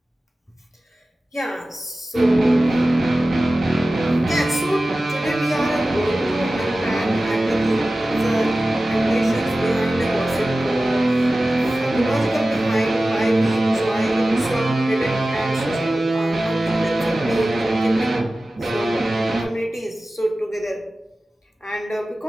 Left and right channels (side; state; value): both; normal; correlation 0.96